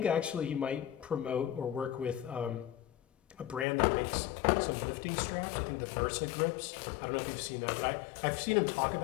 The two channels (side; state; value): right; drops out; at 3.7 s